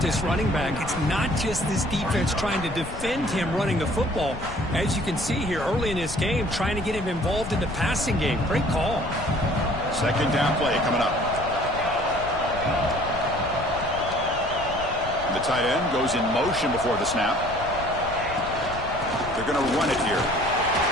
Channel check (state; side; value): noise; left; rumble, 11 dB below the sound